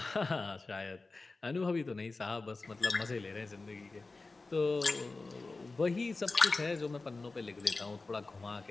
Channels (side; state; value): right; quieter; 3.6 dB